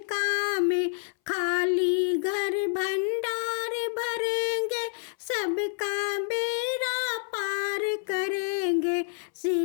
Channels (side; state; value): right; silent; 59 dB below the other